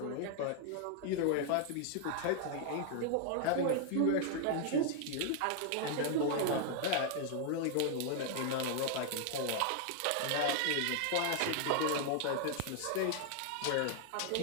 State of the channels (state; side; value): different; both; correlation 0.00